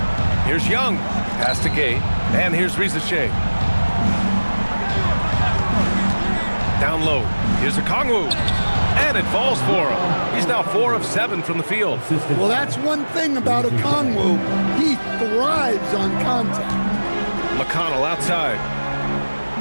Here's Young. Pass to Gay. And here's Risache. Down low. Here's Okongwu. And it falls for him. He's now 4 of 7 from the field. Well, that's one thing about Okongwu. He thrives on contact. McConnell outside.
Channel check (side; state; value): both; inverted; correlation -1.00